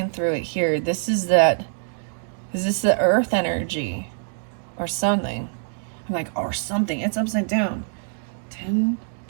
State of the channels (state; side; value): silent; left; 62 dB below the other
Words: through it here. This is that. Is this the earth energy or something? I'm like, or something. It's upside down. 10,